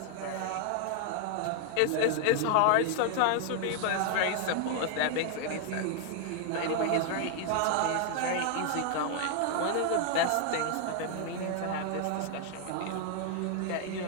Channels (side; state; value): both; different; correlation 0.00